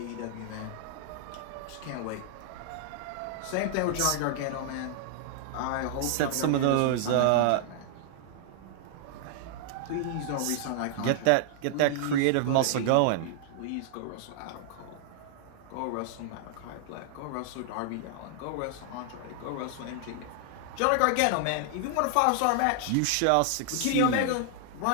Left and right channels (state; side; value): different; both; correlation -0.01